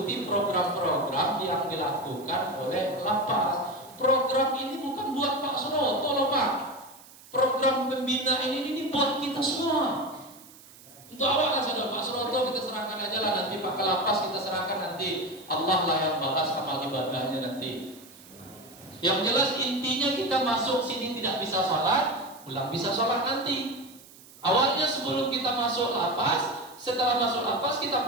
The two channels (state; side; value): noise; right; hiss, 22 dB below the sound